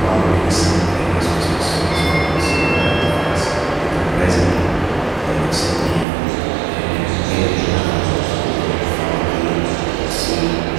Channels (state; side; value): drops out; left; at 6.1 s